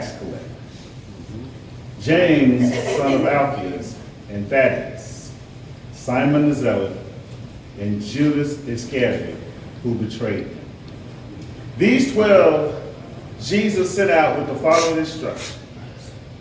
collector, James, son of Alphaeus, and Thaddeus, Simon the Zealot, and Judas Iscariot, who betrayed him. These 12 Jesus sent out with the following instructions:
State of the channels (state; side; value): identical; both; correlation 1.00